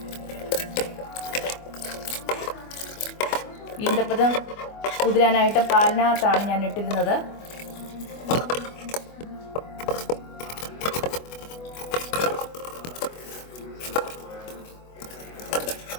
ഈന്തപ്പഴം കുതിരാനായിട്ട് പാലിനകത്താണ് ഞാൻ ഇട്ടിരുന്നത്.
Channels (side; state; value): right; late; 24 ms